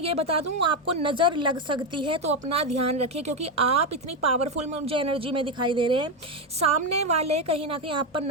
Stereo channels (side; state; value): both; normal; correlation 0.08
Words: बता दूं, आपको नज़र लग सकती है, तो अपना ध्यान रखिए, क्योंकि आप इतनी पावरफुल मुझे एनर्जी में दिखाई दे रहे हैं, सामने वाले कहीं ना कहीं आप पर